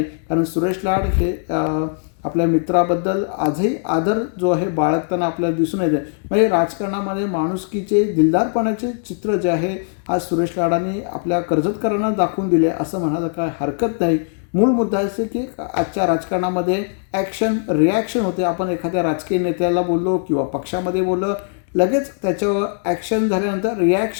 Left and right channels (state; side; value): silent; right; 66 dB below the other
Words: कारण सुरेश लाड हे आपल्या मित्राबद्दल आजही आदर जो आहे बाळगताना आपल्याला दिसून येते. म्हणजे राजकारणामध्ये माणुसकीचे, दिलदारपणाचे चित्र जे आहे आज सुरेश लाडांनी आपल्या कर्जतकरांना दाखवून दिले असं म्हणायला काय हरकत नाही. मूळ मुद्दा असे की आजच्या राजकारणामध्ये ॲक्शन रिॲक्शन होते. आपण एखाद्या राजकीय नेत्याला बोललो किंवा पक्षामध्ये बोललो, लगेच त्याच्यावर ॲक्शन झाल्यानंतर